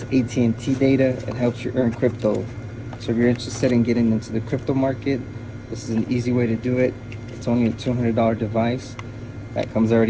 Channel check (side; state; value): both; identical; correlation 1.00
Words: AT&T data and helps you earn crypto. So if you're interested in getting into the crypto market, this is an easy way to do it. It's only a $200 device that comes